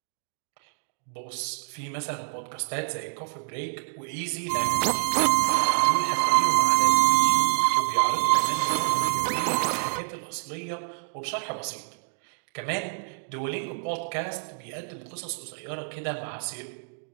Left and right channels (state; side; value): silent; left; digital silence